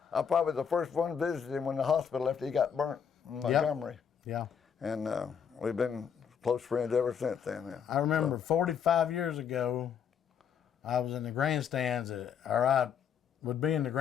probably the first one visited him when the hospital after he got burnt in Montgomery. Yeah. And we've been close friends ever since then. Yeah. I remember 45 years ago, I was in the grandstands I would be in the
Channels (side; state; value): right; quieter; 7.5 dB